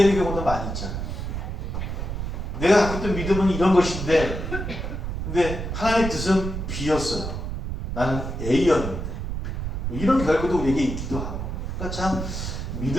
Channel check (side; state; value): right; noise; rumble, 4 dB below the sound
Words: 경우도 많이 있잖아요. 내가 갖고 있던 믿음은 이런 것인데 근데 하나님의 뜻은 B였어요. 나는 A였는데 이런 결과도 우리에게 있기도 하고 그러니까 참